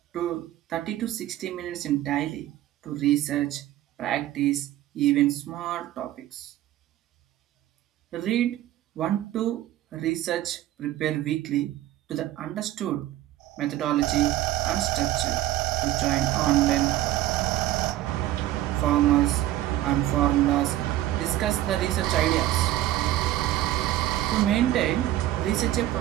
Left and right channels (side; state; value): left; quieter; 14.1 dB